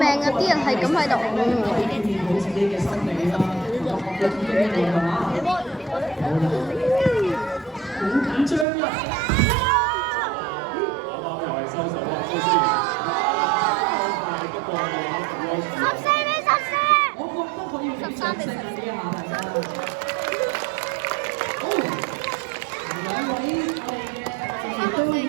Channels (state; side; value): drops out; left; at 8.7 s